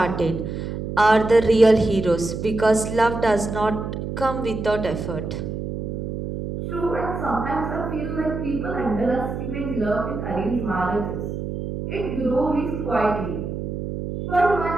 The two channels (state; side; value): noise; right; hum, 5 dB below the sound